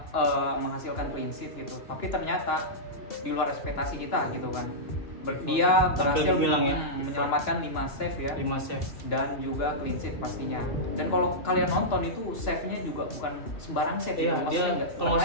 menghasilkan clean sheet gitu. Tapi ternyata di luar ekspektasi kita gitu kan. Dia berhasil menyelamatkan 5 save ya. 5 save dan juga clean sheet pastinya. Dan kalau kalian nonton itu save-nya juga bukan sembarang save. Iya, dia kalau nggak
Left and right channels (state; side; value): late; right; 2.9 ms